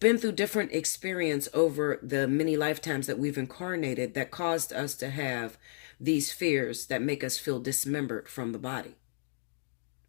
been through different experience over the many lifetimes that we've incarnated that caused us to have these fears that make us feel dismembered from the body.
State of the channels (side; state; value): right; silent; digital silence